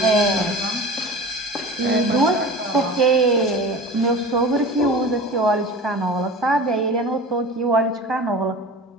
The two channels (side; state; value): both; normal; correlation 0.35